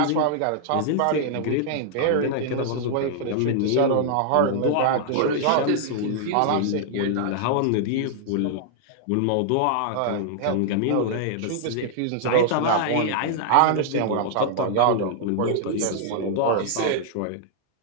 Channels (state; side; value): different; both; correlation -0.01